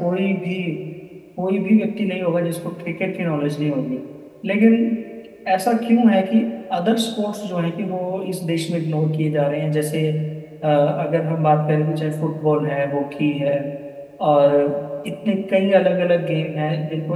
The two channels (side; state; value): both; identical; correlation 1.00